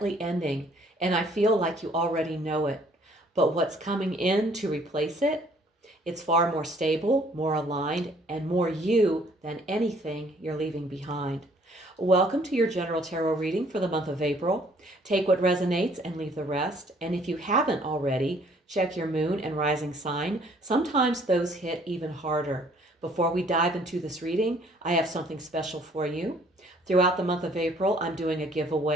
ending, and I feel like you already know it. But what's coming in to replace it? It's far more stable, more aligned, and more you than anything you're leaving behind. Welcome to your general tarot reading for the month of April. Take what resonates and leave the rest. And if you haven't already, check your moon and rising sign. Sometimes those hit even harder. Before we dive into this reading, I have something special for you. Throughout the month of April, I'm doing a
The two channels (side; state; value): both; normal; correlation 0.60